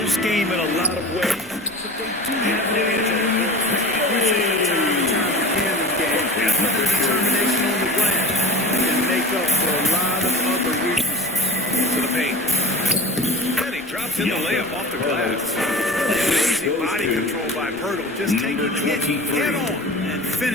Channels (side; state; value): left; noise; rumble, 29 dB below the sound